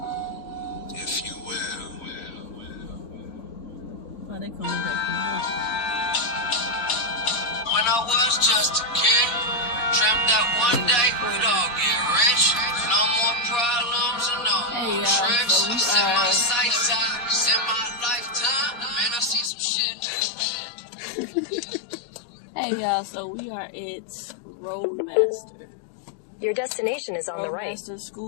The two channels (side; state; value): right; drops out; at 19.5 s